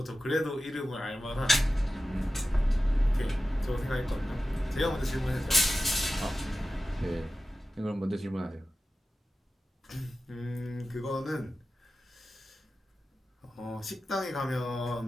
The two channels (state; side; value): normal; both; correlation 0.93